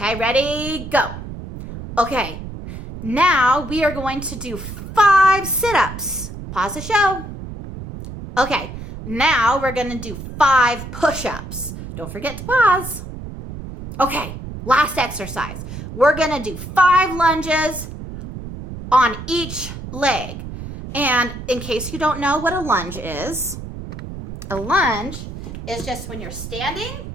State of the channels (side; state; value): right; noise; rumble, 10 dB below the sound